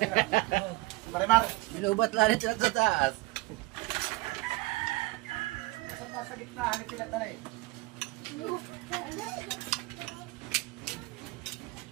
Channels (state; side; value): quieter; left; 21.7 dB